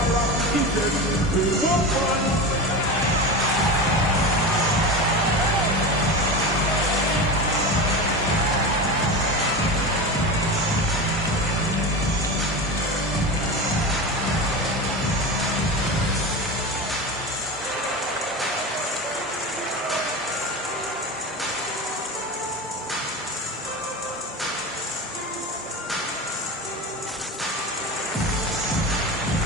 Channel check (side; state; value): both; normal; correlation 0.25